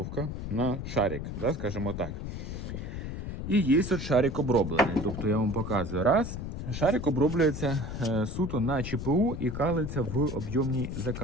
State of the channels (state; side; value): noise; left; rumble, 6 dB below the sound